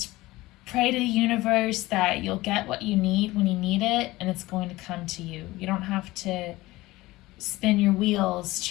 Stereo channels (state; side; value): quieter; right; 18.9 dB